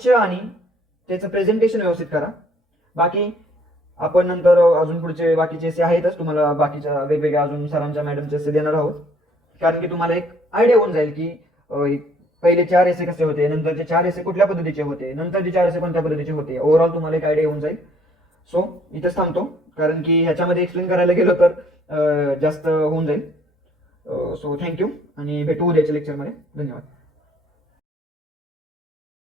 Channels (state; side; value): normal; both; correlation 0.62